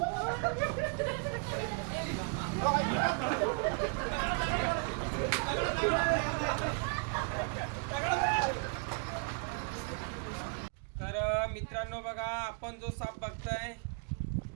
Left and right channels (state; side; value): quieter; left; 38.1 dB